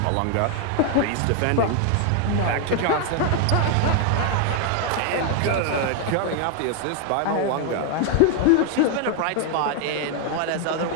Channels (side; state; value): both; different; correlation 0.01